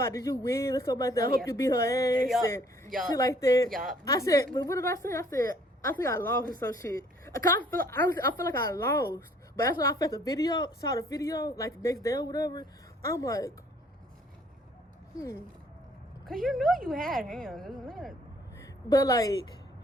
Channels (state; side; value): normal; both; correlation 0.60